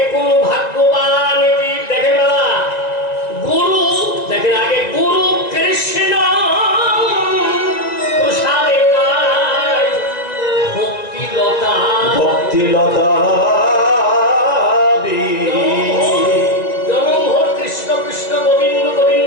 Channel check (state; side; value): late; right; 1.9 ms